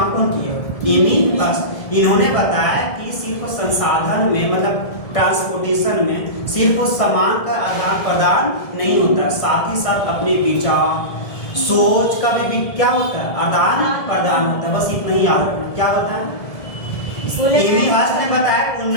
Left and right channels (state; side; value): late; right; 1.7 ms